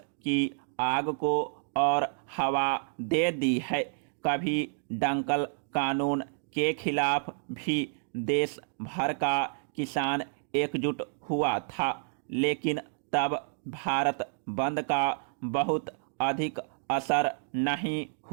की आग को और हवा दे दी है। कभी डंकल कानून के खिलाफ भी देश भर का किसान एकजुट हुआ था, लेकिन तब भारत बंद का बहुत अधिक असर नहीं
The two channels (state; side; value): silent; left; digital silence